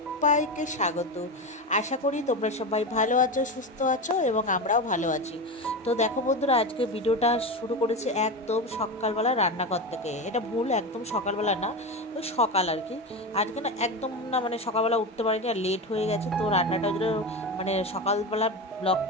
স্বাগত। আশা করি তোমরা সবাই ভালো আছো, সুস্থ আছো এবং আমরাও ভালো আছি। তো দেখো বন্ধুরা, আজকে ভিডিওটা শুরু করেছি একদম সকালবেলা রান্নাঘর থেকে। এটা ভুল, একদম সকালবেলা না, ওই সকাল আর কি। আজকে না একদম না, মানে সকালবেলা উঠতে পারিনি আর লেট হয়ে গেছে। তো রান্নাটা মানে সকালবেলা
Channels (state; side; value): normal; both; correlation 0.21